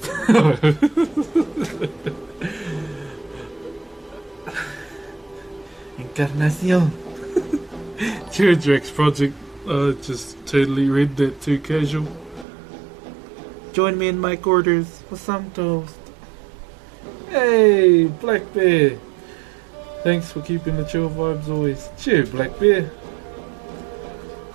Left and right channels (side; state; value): left; drops out; at 12.5 s